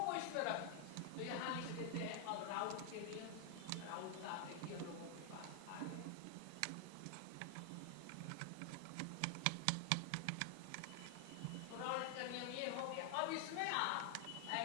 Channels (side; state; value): both; different; correlation 0.00